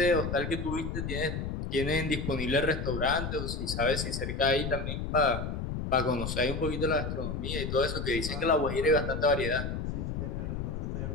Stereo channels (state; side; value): noise; left; rumble, 3 dB below the sound